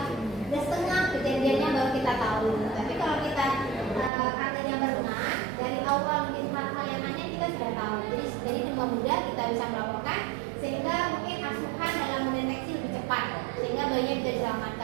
setengah kejadiannya baru kita tahu awal mungkin hal-hal yang aneh kita sudah tahu. Jadi dengan mudah kita bisa melaporkan sehingga mungkin asuhan dalam mendeteksi lebih cepat sehingga bayinya bisa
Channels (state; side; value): drops out; left; at 4.1 s